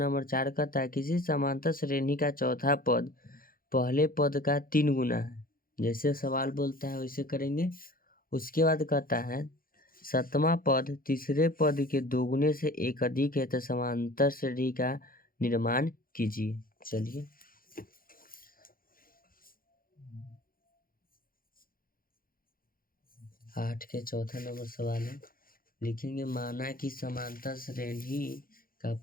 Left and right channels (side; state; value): right; late; 0.42 ms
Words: 4 कहता है किसी समांतर श्रेणी का चौथा पद पहले पद का 3 गुना है। जैसे सवाल बोलता है वैसे करेंगे। उसके बाद कहता है सातवां पद तीसरे पद के 2 गुने से एक अधिक है तो समांतर श्रेणी का निर्माण कीजिए। चलिए 8 के चौथा नंबर सवाल है। लिखेंगे माना कि समांतर श्रेणी का